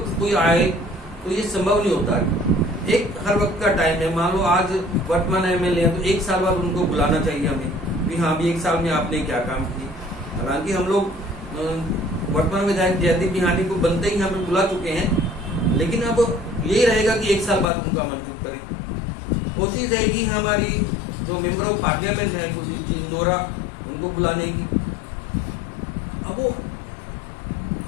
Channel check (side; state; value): right; drops out; at 17.7 s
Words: कोई आए तो ये संभव नहीं होता। एक हर वक्त का टाइम है, मान लो आज वर्तमान एमएलए है तो एक साल बाद उनको बुलाना चाहिए हमें भी, हाँ भी एक साल में आपने क्या काम किए। हालांकि हम लोग वर्तमान विधायक जयदीप बिहानी को बनते ही यहाँ पे बुला चुके हैं, लेकिन अब यही रहेगा कि एक साल बाद उनका आमंत्रित करें। कोशिश रहेगी हमारी जो मेंबर ऑफ पार्लियामेंट है कुलदीप जी इंदौरा, उनको बुलाने की। अब वो